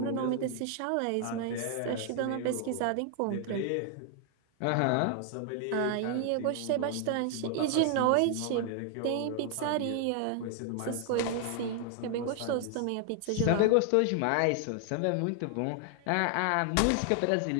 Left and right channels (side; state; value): both; different; correlation 0.00